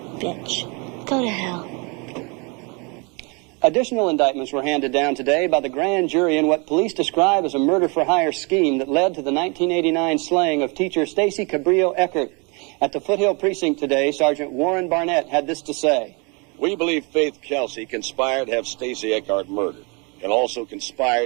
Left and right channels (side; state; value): left; quieter; 31.3 dB